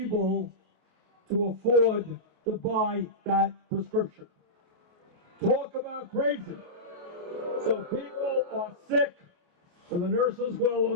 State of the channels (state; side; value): late; left; 28 ms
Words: to afford to buy that prescription. Talk about crazy. So people are sick, and the nurses well